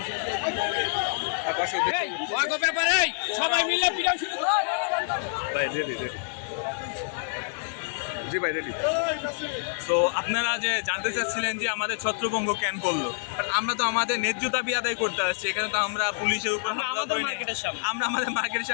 সবাই মিলে পিটাও শুরু ভাই রেডি রেডি জি ভাই রেডি। তো আপনারা যে জানতে চাচ্ছিলেন যে আমাদের ছত্রভঙ্গ কেন করলো, আমরা তো আমাদের ন্যায্য দাবি আদায় করতে আসছি। এখানে তো আমরা পুলিশের উপর হামলা করি নাই, আমরা আমাদের মার্কেটের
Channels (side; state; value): right; silent; digital silence